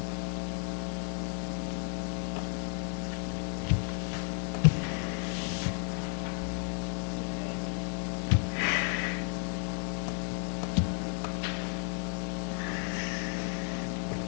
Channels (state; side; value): silent; right; 56 dB below the other